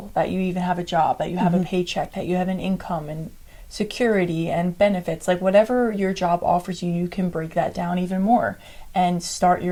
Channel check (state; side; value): identical; both; correlation 1.00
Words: that you even have a job, that you have a paycheck, that you have an income and security and benefits. Like whatever your job offers you, you can break that down even more and start